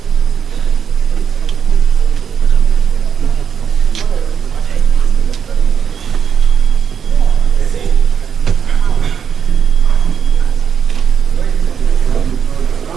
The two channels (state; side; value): quieter; left; 7.5 dB